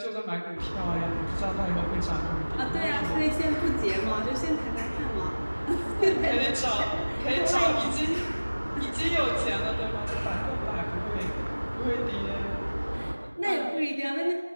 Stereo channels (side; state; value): both; inverted; correlation -1.00